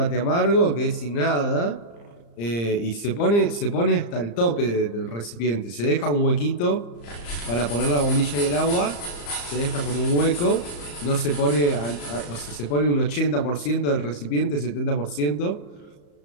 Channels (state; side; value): late; right; 35 ms